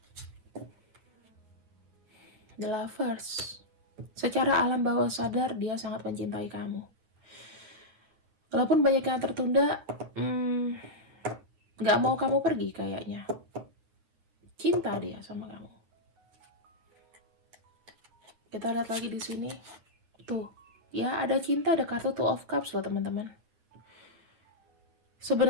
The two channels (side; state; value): left; late; 9.8 ms